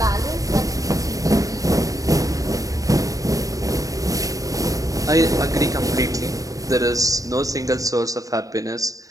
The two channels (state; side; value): late; left; 0.17 ms